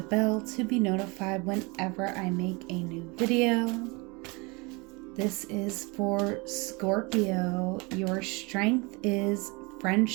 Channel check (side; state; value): left; quieter; 27.5 dB